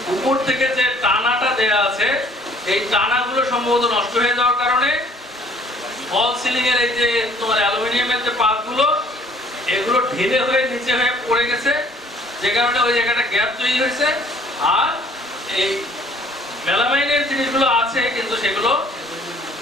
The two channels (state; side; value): normal; both; correlation 0.57